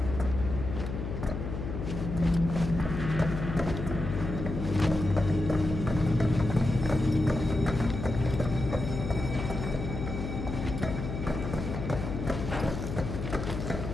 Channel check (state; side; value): noise; left; hum, 5 dB below the sound